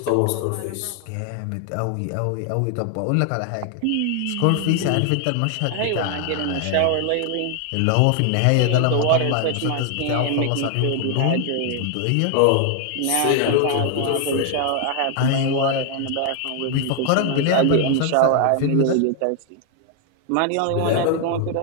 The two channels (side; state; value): both; different; correlation 0.00